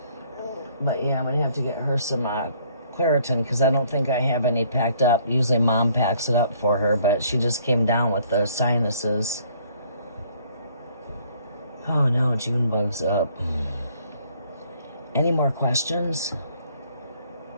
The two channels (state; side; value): inverted; both; correlation -0.62